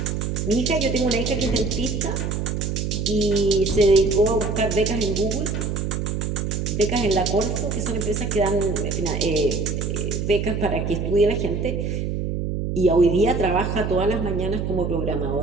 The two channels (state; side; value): noise; right; hum, 2 dB below the sound